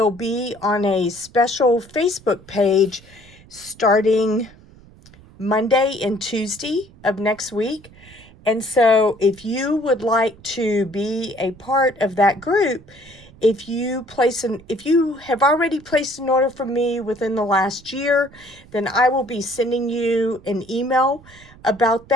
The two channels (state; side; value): noise; right; rumble, 23 dB below the sound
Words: be on a special Facebook page starting Monday and Tuesday of next week. And so if you would like to be a part of that group, if you have already placed an order from me within the last year, then I will be sending you an email about